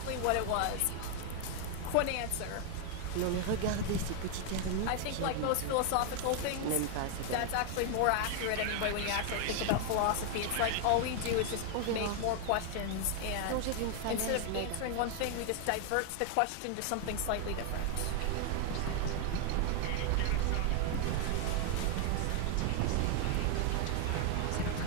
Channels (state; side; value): different; both; correlation 0.01